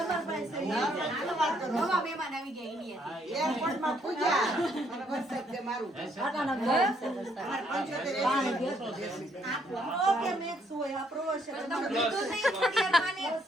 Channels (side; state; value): both; normal; correlation 0.70